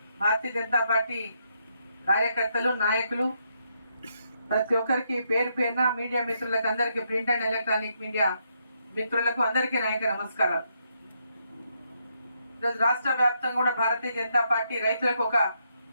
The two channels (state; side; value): inverted; both; correlation -0.77